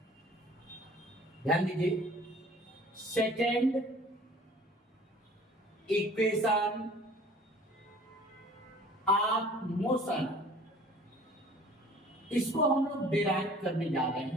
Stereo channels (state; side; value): normal; both; correlation 0.50